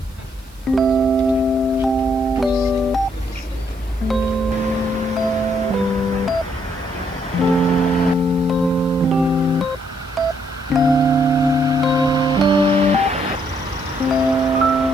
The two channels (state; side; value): noise; right; hiss, 28 dB below the sound